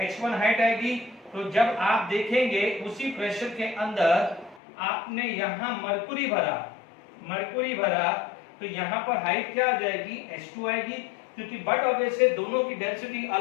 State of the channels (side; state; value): right; drops out; at 4.6 s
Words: H1 हाइट आएगी, तो जब आप देखेंगे उसी प्रेशर के अंदर आपने यहाँ मरकुरी भरा तो यहाँ पर हाइट क्या आ जाएगी, H2 आएगी, क्योंकि बट ऑब्वियसली दोनों की डेंसिटी